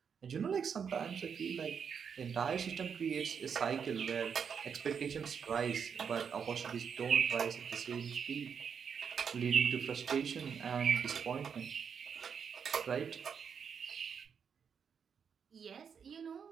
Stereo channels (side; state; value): left; quieter; 6.9 dB